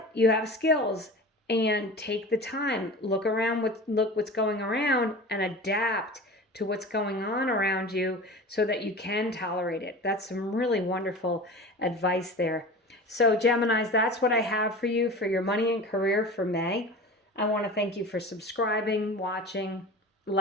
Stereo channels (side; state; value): both; normal; correlation 0.35